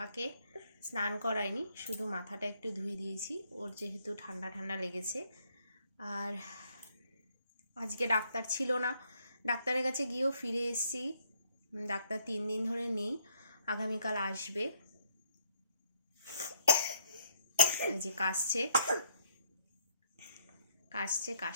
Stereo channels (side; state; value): both; inverted; correlation -0.68